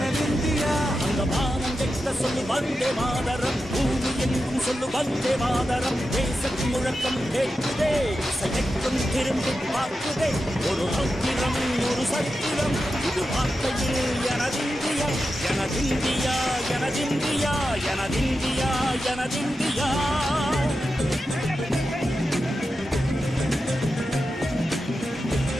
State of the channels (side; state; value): both; normal; correlation 0.90